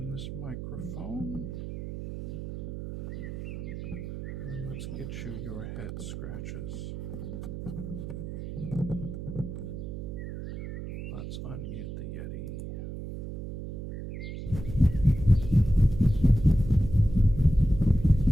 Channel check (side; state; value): right; noise; hum, 7 dB below the sound